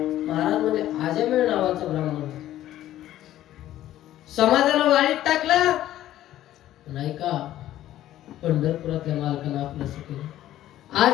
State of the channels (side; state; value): right; quieter; 13.3 dB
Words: म्हणले आजामेळ नावाचा ब्राह्मण समाजाला वाळीत टाकला नाही का, पंढरपुरातल्या मालकानं आपलं केलं.